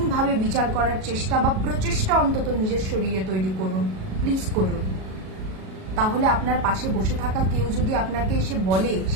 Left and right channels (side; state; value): left; late; 37 ms